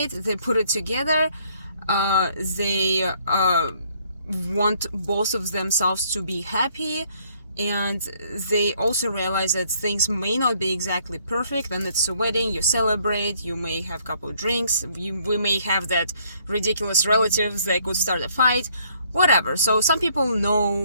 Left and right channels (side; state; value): both; inverted; correlation -0.65